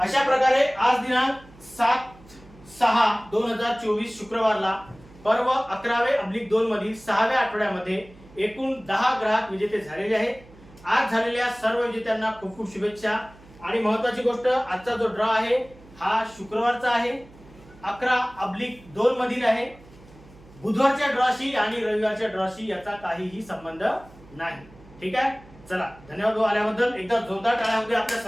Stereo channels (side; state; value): right; noise; hum, 23 dB below the sound